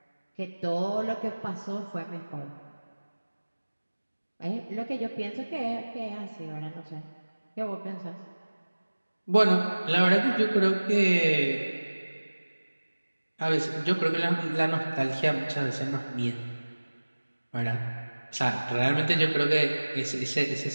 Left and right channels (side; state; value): both; inverted; correlation -1.00